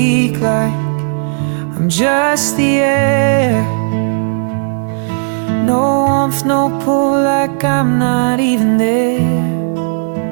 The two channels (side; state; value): left; silent; digital silence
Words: like I'm just the air. No warmth, no pull, like I'm not even there.